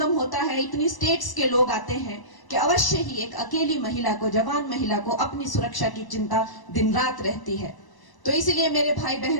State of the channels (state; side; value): late; right; 1.0 ms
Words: होता है, इतनी स्टेट्स के लोग आते हैं कि अवश्य ही एक अकेली महिला को, जवान महिला को अपनी सुरक्षा की चिंता दिन रात रहती है। तो इसलिए मेरे भाई